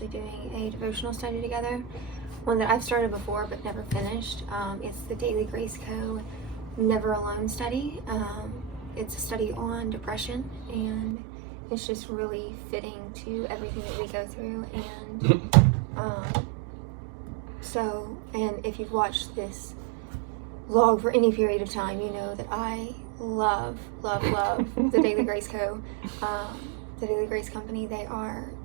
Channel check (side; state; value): left; drops out; at 11.2 s